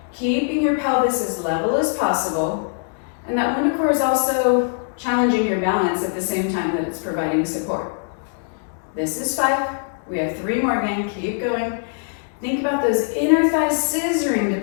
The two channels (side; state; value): right; silent; 64 dB below the other